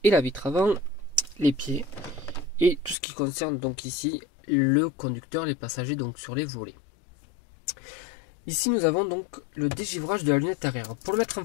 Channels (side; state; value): right; drops out; at 3.0 s